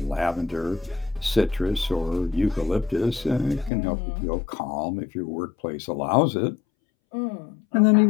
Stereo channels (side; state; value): right; drops out; at 3.7 s